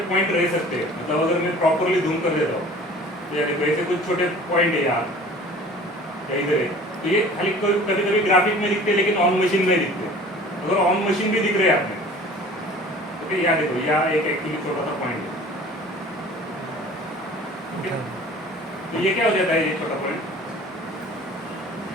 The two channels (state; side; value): normal; both; correlation 0.45